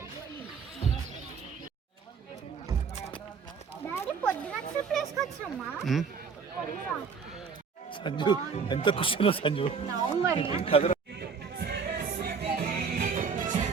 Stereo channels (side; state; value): left; quieter; 5.7 dB